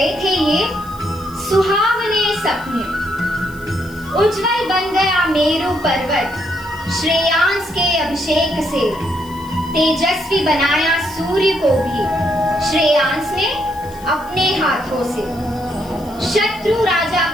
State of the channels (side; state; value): left; noise; hiss, 22 dB below the sound